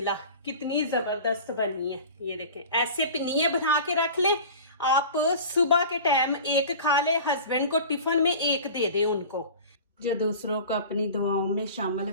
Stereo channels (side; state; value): both; inverted; correlation -0.38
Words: कितनी जबरदस्त बनी है। ये देखें ऐसे पिनिये बना के रख लें आप, सुबह के टाइम 1 खा ले, हस्बैंड को टिफिन में 1 दे दे उनको। जो दूसरों को अपनी दुआओं में शामिल